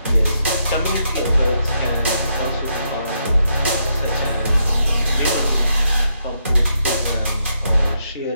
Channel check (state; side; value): inverted; both; correlation -0.79